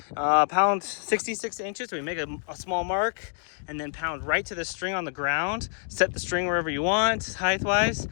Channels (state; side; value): silent; right; digital silence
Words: pound 66 inches. We make a small mark and then pound right to the string on the ground. Set the string wherever you want, height-wise,